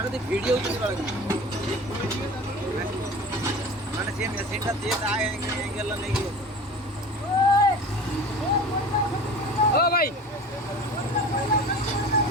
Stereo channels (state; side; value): normal; both; correlation 0.37